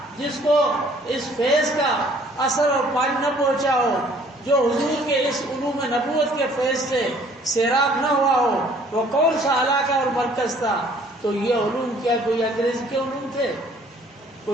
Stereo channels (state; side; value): normal; both; correlation 0.58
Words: جس کو اس فیض کا اثر اور پانی نہ پہنچا ہو، جو حضور کے اس علوم نبوت کے فیض سے سیراب نہ ہوا ہو؟ وہ کون سا علاقہ اور مرکز تھا؟ تو یہ علوم کیا کوئی انگریز کے علوم تھے؟